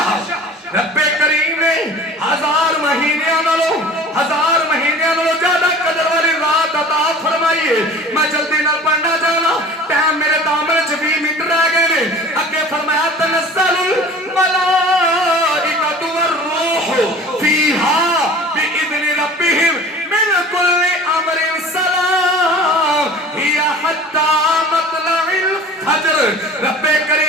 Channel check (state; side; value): normal; both; correlation 0.43